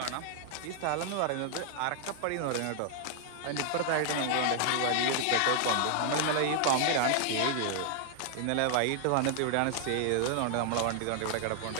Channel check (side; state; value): both; different; correlation 0.00